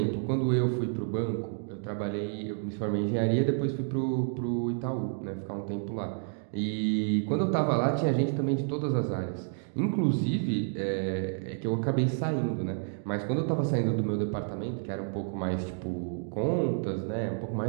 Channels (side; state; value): left; silent; 58 dB below the other